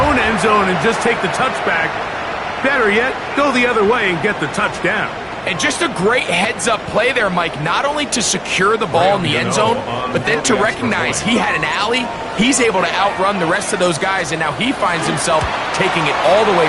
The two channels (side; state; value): both; identical; correlation 1.00